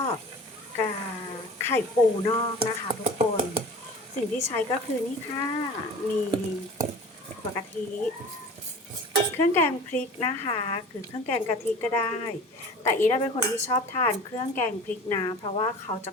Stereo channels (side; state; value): both; normal; correlation 0.40